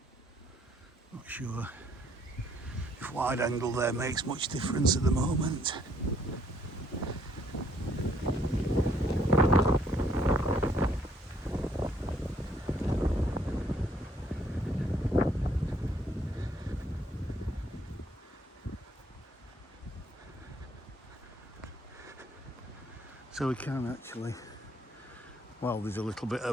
Not sure if wide angle there makes much difference at the moment. So we can actually Well, there's a little bit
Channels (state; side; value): normal; both; correlation 0.65